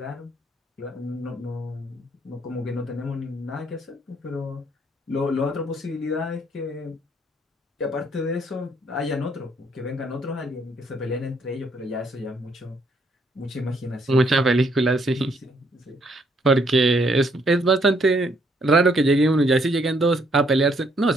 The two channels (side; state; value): both; normal; correlation 0.69